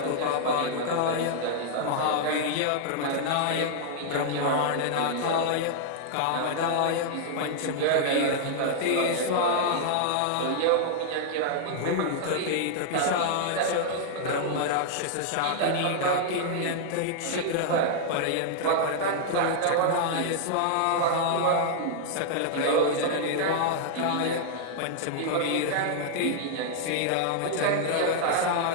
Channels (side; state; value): both; different; correlation -0.01